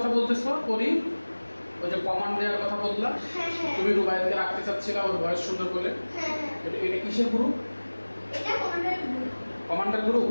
বলতেছো? করি ওই যে কমান্ড দেওয়ার কথা বললা। হ্যাঁ হ্যাঁ তুমি রুবাইয়াতকে রাখতে চাচ্ছিলা ওর ভয়েস সুন্দর বলে। হ্যাঁ এটা কিসের গ্রুপ? এটা কমান্ডার গ্রুপ। Commander group.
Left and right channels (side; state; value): both; inverted; correlation -1.00